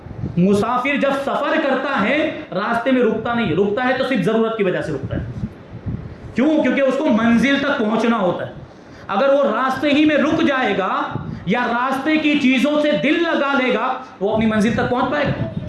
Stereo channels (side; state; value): both; identical; correlation 1.00